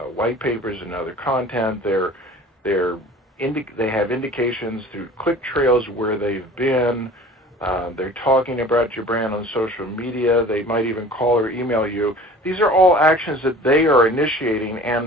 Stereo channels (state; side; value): normal; both; correlation 0.43